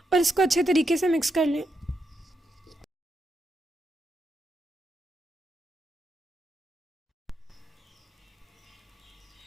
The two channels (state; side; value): normal; both; correlation 0.83